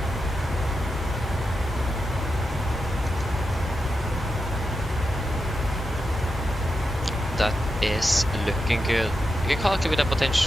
That is looking good. You can calculate with a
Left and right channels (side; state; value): both; normal; correlation 0.88